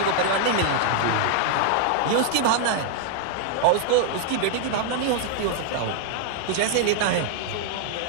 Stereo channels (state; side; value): different; both; correlation 0.00